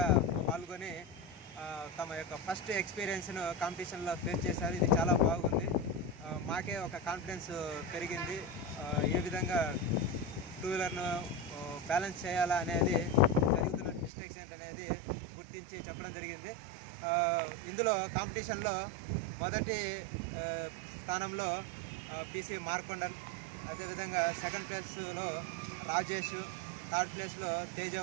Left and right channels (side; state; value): left; drops out; at 14.1 s